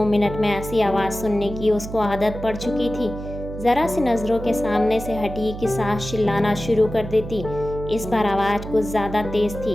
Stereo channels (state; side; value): noise; right; hum, 10 dB below the sound